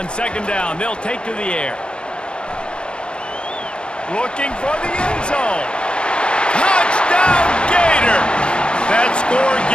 second down, they'll take to the air. Looking for the end zone. Touchdown, Gator! That score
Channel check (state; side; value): late; right; 0.054 ms